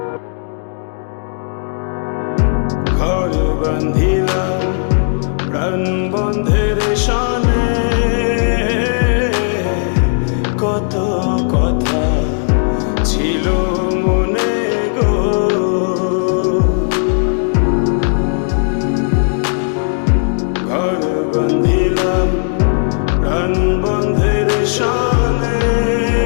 ঘর বান্ধিলাম প্রাণ বন্ধের শানে, কত কথা ছিল মনে গো। ঘর বান্ধিলাম প্রাণ বন্ধের শানে,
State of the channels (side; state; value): right; silent; digital silence